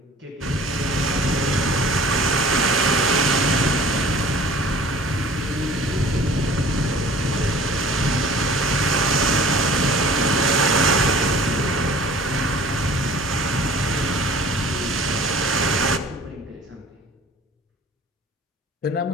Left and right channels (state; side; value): normal; both; correlation 0.47